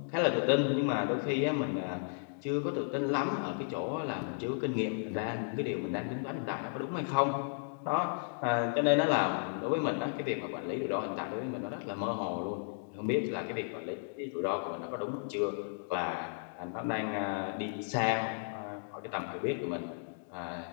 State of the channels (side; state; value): right; silent; digital silence